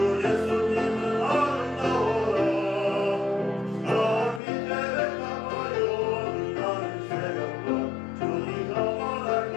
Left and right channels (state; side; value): drops out; right; at 4.4 s